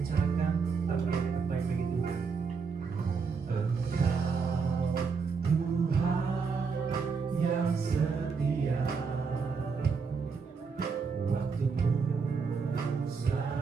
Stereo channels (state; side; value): quieter; left; 5.3 dB